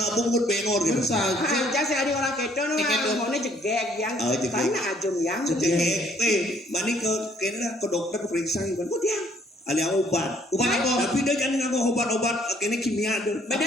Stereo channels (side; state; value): both; normal; correlation 0.63